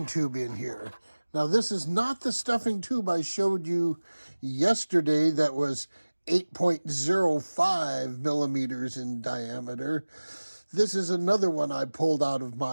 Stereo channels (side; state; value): both; inverted; correlation -1.00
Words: tube in here. Now, this is not the stuffing tube I showed you yesterday that was 8.05 millimeters in diameter. This is another one I pulled out of